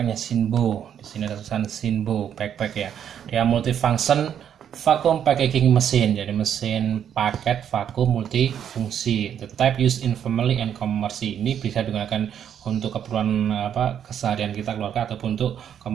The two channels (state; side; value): quieter; left; 9.1 dB